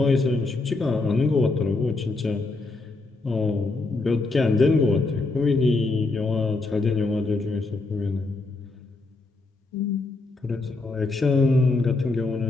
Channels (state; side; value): quieter; right; 3.4 dB